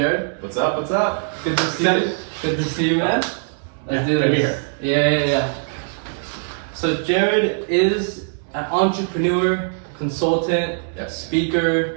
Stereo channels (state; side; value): silent; left; 65 dB below the other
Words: What's up? What's up? Good to see you. Good to see you, man. Let's do this. Yeah. So Jared is an entrepreneur, consultant,